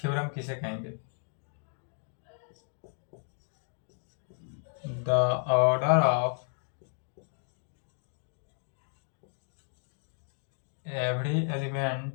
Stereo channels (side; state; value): right; silent; 56 dB below the other